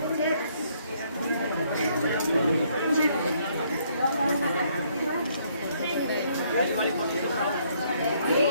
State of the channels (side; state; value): both; inverted; correlation -0.68